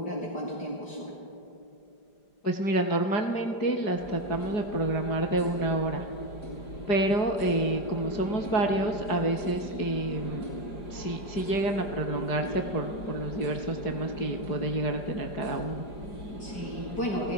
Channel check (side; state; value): right; late; 5.0 ms